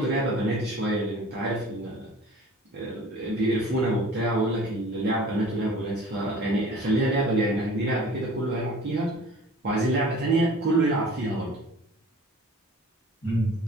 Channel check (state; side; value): normal; both; correlation 0.46